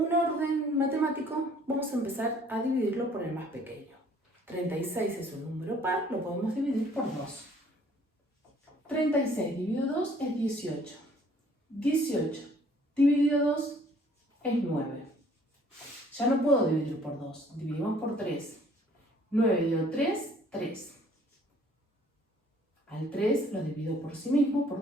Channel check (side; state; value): both; normal; correlation 0.58